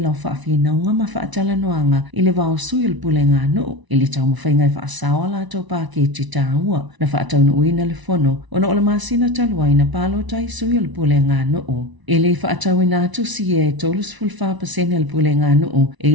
o whaafina unga ma whaatala noanga i le vao sui le pulenga noo i le tau mawhainga i whaasawa la tau pāketi tāua na whaatau na uina le fono o na o le masina taluai na palo tai sui le pulenga noo. E le whaatau ina atu si e tolus fulfa pasene le pulenga noo e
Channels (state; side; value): late; left; 1.0 ms